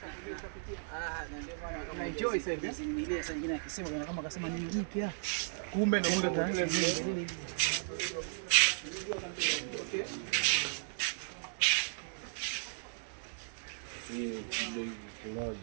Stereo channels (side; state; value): left; silent; 54 dB below the other